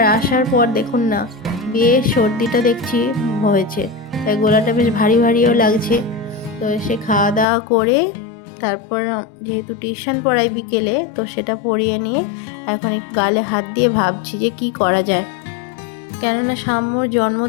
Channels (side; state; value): right; drops out; at 7.5 s